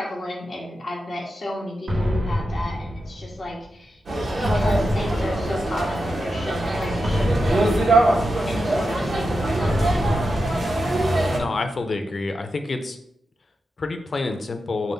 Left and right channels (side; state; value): both; normal; correlation 0.88